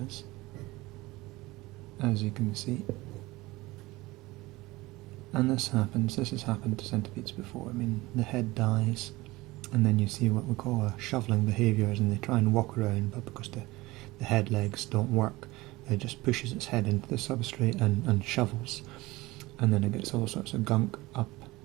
as you can see. And this has happened to centipedes before. I mean, the head dies, and then you see what we call a shoveling behaviours, and they try and walk around, but because the head legs don't work, it just pushes its head into the substrate and shovels. And then it gets all sorts of gunk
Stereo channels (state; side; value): quieter; left; 20.3 dB